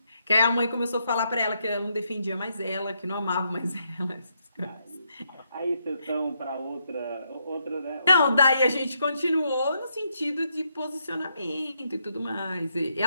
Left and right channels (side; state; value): both; inverted; correlation -0.78